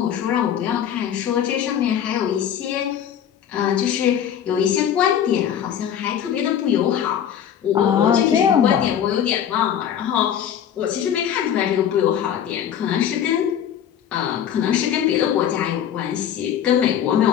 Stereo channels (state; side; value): quieter; right; 9.4 dB